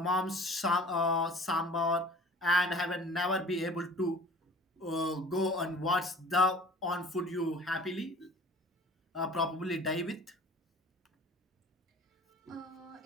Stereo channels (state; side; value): normal; both; correlation 0.46